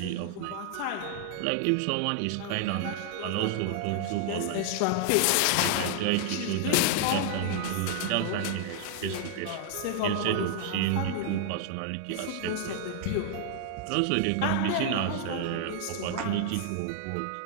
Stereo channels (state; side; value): different; both; correlation -0.01